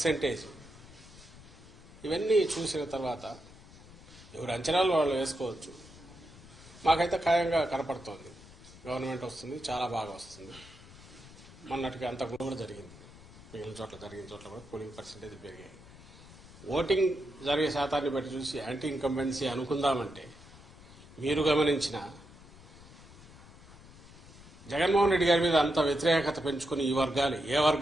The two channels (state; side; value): noise; left; rumble, 20 dB below the sound